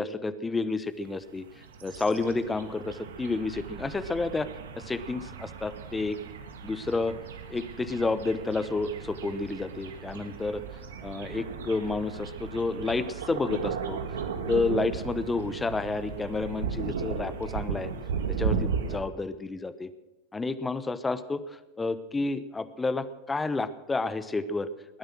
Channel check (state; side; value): normal; both; correlation 0.63